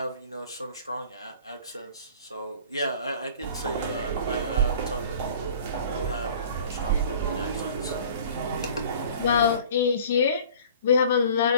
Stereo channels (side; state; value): both; inverted; correlation -0.47